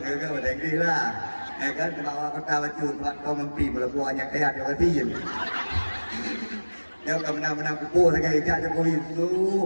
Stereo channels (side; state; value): both; inverted; correlation -1.00